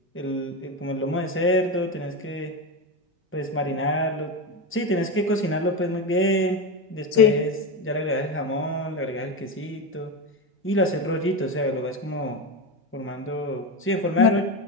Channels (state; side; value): normal; both; correlation 0.16